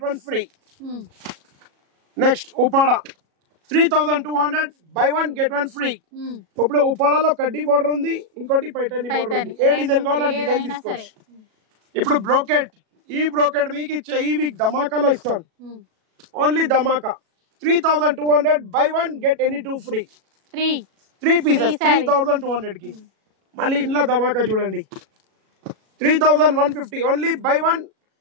1 free. Next Uppada 3200, by 1 get 1 free. ఇప్పుడు ఉపాడలో కడ్డీ బోర్డర్ ఉంది, ఇంకోటి పైటర్నీ బోర్డర్ ఉంది. ఏ డిజైన్ కావాలో డిజైన్ తీసుకోవచ్చు. ఇప్పుడు బ్రోకెట్, ఈ బ్రోకెట్ మీకు ఇచ్చే ఈ వీక్ ధమాకాలో ఇస్తాను. Only Dhamaka 3200, by 1 get any 2 free. 3 pieces 3200 కి. మళ్ళీ ఇంట్లో ధమాకా చూడండి 3150, only by 1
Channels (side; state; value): left; late; 37 ms